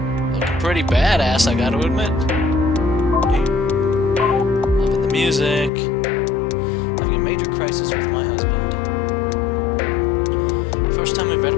Looking pretty badass, I gotta admit. Loving the music. Having a major crisis with my husband. First time we've read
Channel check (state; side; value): drops out; right; at 5.7 s